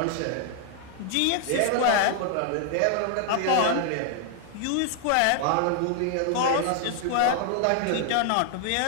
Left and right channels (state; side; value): different; both; correlation 0.00